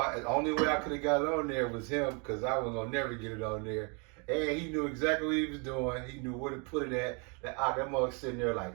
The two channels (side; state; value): left; quieter; 34.5 dB